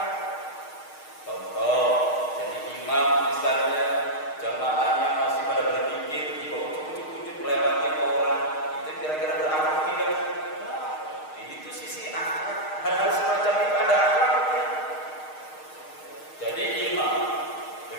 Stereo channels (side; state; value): right; late; 6.5 ms